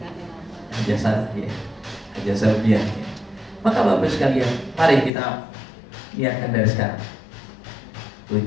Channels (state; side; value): drops out; right; at 5.1 s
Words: Haji selfie ya. Maka Bapak sekalian, mari kita niatkan dari sekarang.